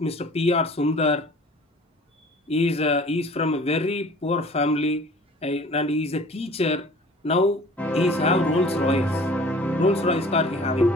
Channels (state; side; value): normal; both; correlation 0.47